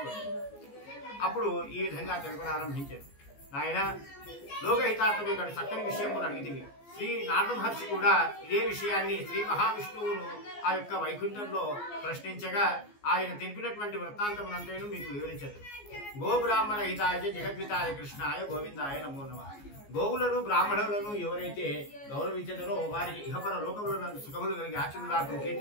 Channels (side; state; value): right; late; 14 ms